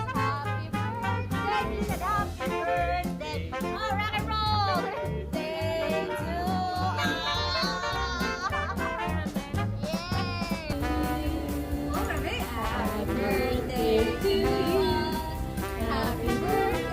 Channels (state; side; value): identical; both; correlation 1.00